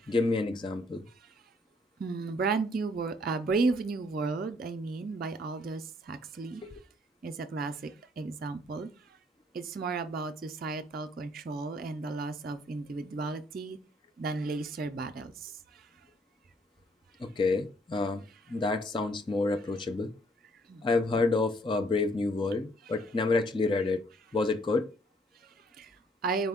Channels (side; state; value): both; normal; correlation 0.65